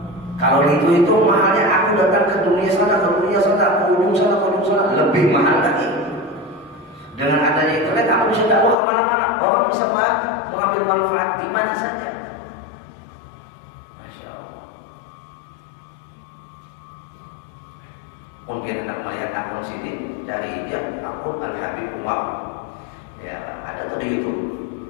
kalau itu mahalnya aku datang ke dunia sana, ke ujung sana, lebih mahal lagi. Dengan adanya internet aku bisa dakwah kemana-mana, orang bisa mengambil manfaat di mana saja. Masya Allah. Mungkin anda melihat akun sini dari akun Al-Habib Umar. Ya, ada tuh di YouTube.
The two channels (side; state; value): right; drops out; at 8.8 s